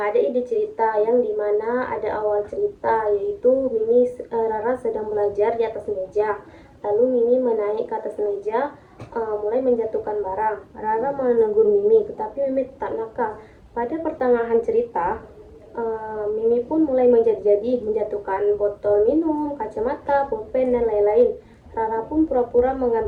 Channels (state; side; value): identical; both; correlation 1.00